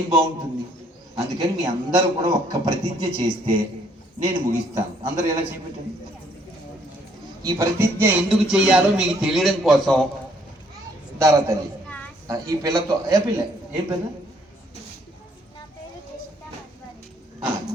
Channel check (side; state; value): both; normal; correlation 0.66